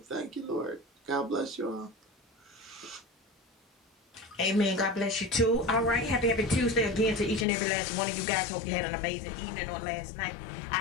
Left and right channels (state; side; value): drops out; right; at 7.5 s